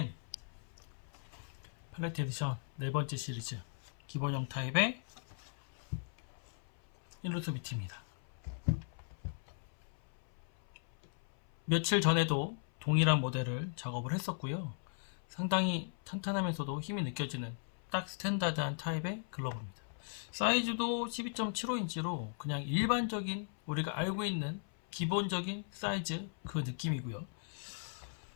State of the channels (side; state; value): right; silent; 52 dB below the other